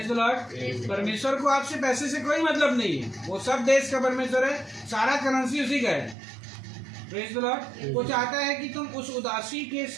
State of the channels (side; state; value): left; drops out; at 6.2 s